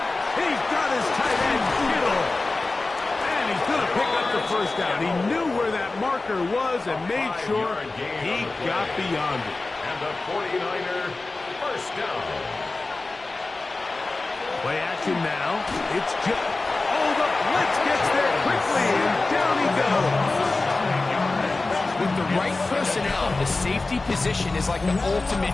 He's got his tight end, Kittle. And he's going to pick up the 1st down. He knew where that marker was and made sure he got beyond it. And the 49er 1st down. Play action now. It's just... Oh, the blitz gets there quickly, and down he goes. With the right personnel, the safety position is like the ultimate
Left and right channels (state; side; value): quieter; right; 3.4 dB